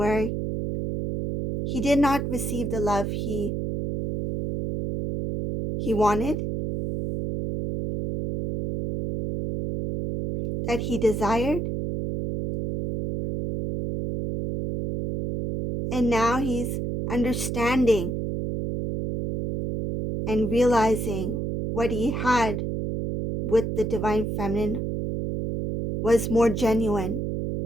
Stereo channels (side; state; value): right; noise; hum, 2 dB below the sound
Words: he did not receive the love he wanted, that he desired. And now he's understanding and realizing what he had with the divine feminine was more genuine,